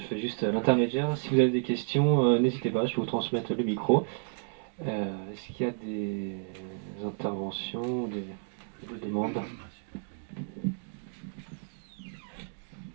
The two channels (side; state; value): left; silent; 57 dB below the other